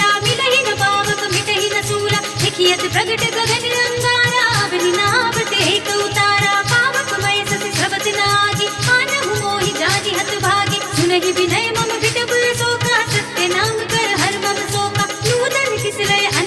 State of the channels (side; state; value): both; identical; correlation 1.00